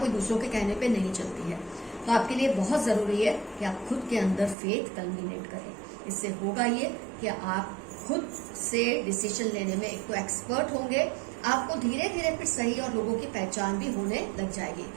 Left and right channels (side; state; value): left; drops out; at 4.5 s